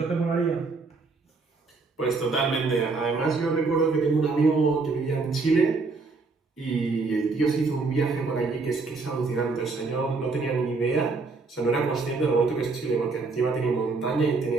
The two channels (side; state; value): left; quieter; 4.0 dB